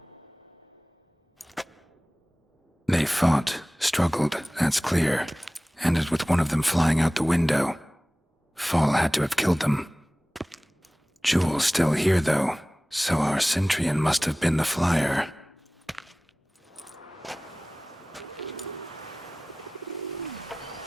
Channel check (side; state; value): both; normal; correlation 0.98